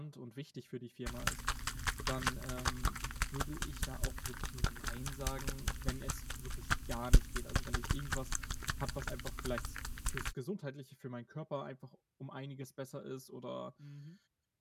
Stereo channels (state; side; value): identical; both; correlation 1.00